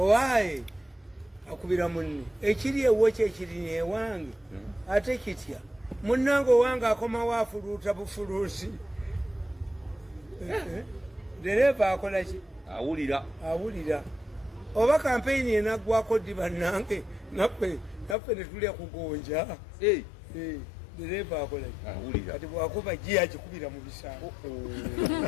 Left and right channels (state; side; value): drops out; right; at 18.2 s